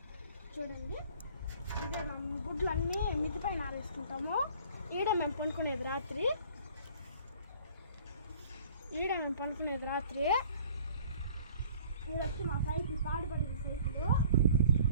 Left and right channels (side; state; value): both; inverted; correlation -0.51